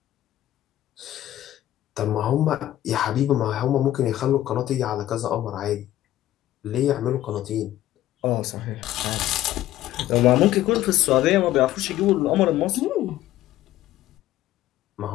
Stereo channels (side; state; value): right; quieter; 13.9 dB